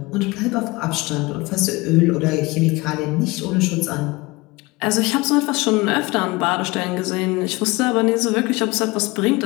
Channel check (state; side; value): quieter; right; 23.0 dB